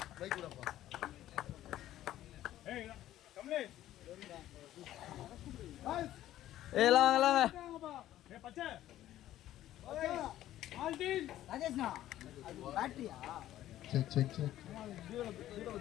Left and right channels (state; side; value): quieter; right; 13.3 dB